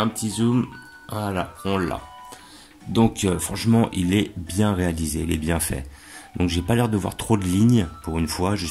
petit zoom, voilà, on l'a. Donc franchement il est bien réalisé, il est bien fait. Donc j'ai pas l'air de voir trop de lignes pour une fois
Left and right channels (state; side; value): identical; both; correlation 1.00